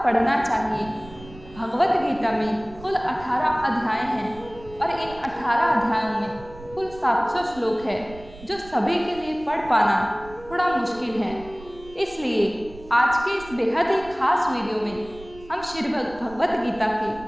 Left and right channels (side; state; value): right; noise; rumble, 19 dB below the sound